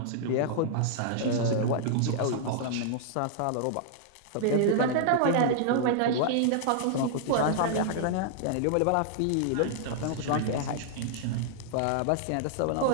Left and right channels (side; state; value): both; different; correlation -0.01